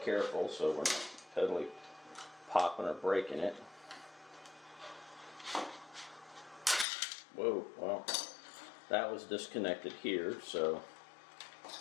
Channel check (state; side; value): drops out; right; at 6.9 s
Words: careful so we're not totally popping or breaking it. Whoa, well, that was disconnected here, so.